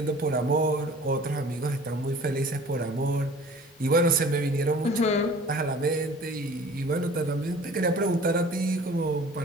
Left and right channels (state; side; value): normal; both; correlation 0.47